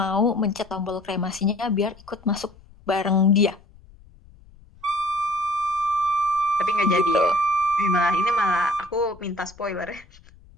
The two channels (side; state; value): left; noise; rumble, 24 dB below the sound